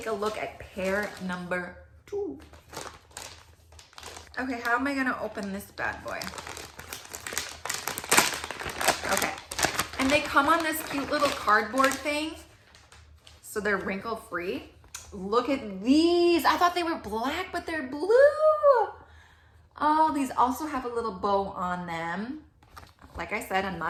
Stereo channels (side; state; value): both; identical; correlation 1.00